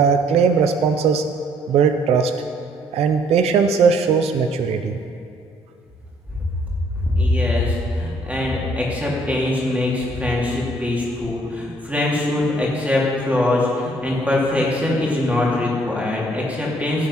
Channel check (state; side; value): normal; both; correlation 0.63